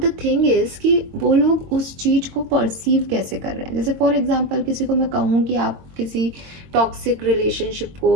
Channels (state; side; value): late; left; 22 ms